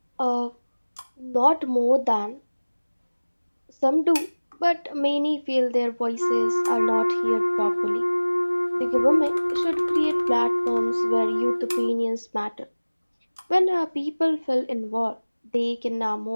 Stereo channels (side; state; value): both; inverted; correlation -1.00